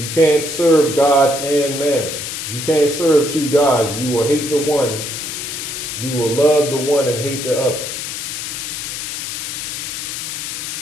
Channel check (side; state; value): left; noise; hiss, 5 dB below the sound